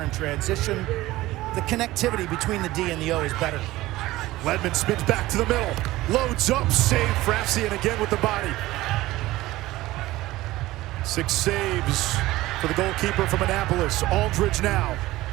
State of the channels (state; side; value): quieter; left; 17.6 dB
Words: in transition. The connectivity between the D and the O is better. Ledman spins back to the middle. Loads up, save Frassian again with the body. 6 saves for the goalkeeper from Annapolis. Aldridge now.